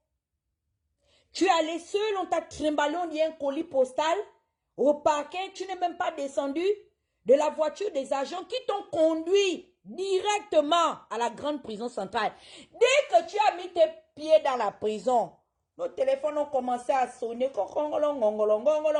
Tu es allé seul, on t'a trimballé, on dit un colis postal? Au parquet, tu n'es même pas descendu de la voiture des agents qui t'ont conduit directement à la grande prison centrale. Dès que tu as mis tes pieds dans la prison, nos téléphones ont commencé à sonner.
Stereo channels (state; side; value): identical; both; correlation 1.00